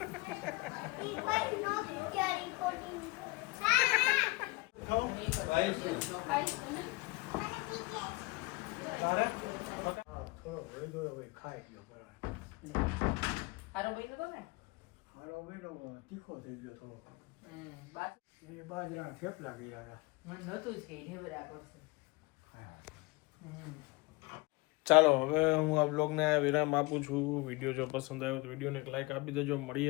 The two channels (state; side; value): quieter; right; 23.9 dB